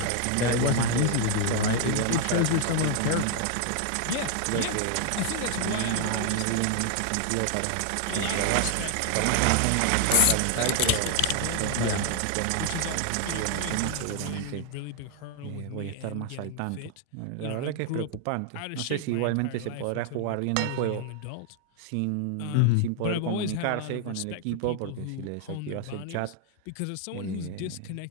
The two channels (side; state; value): both; different; correlation 0.00